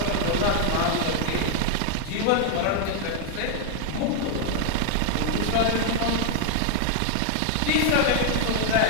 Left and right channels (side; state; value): both; different; correlation 0.00